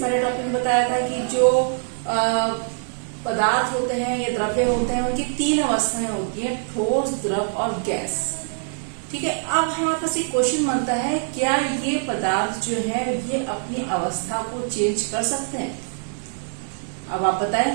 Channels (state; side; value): silent; left; 63 dB below the other